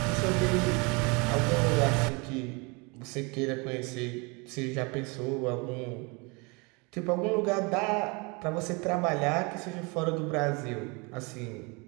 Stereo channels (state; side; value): quieter; left; 29.2 dB